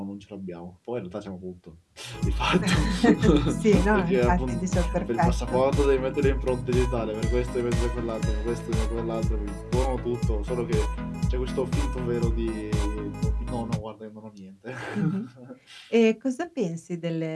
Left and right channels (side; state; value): both; identical; correlation 1.00